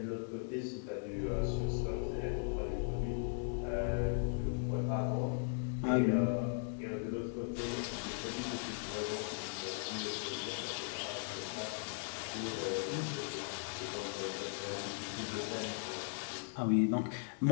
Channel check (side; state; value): right; silent; 52 dB below the other